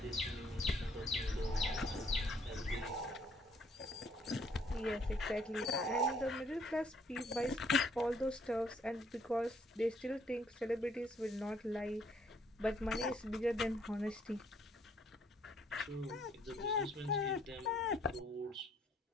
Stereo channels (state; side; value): normal; both; correlation 0.66